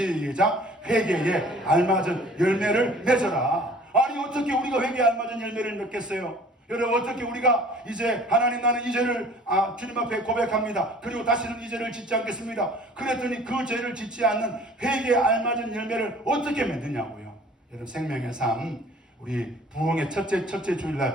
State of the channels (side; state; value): both; normal; correlation 0.50